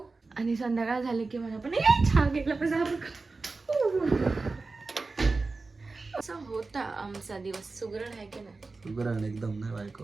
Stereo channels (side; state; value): left; quieter; 3.8 dB